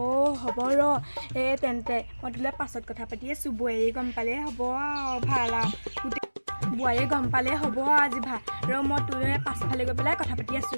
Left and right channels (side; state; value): both; inverted; correlation -1.00